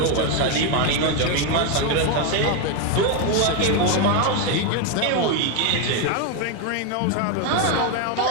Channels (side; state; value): both; different; correlation 0.02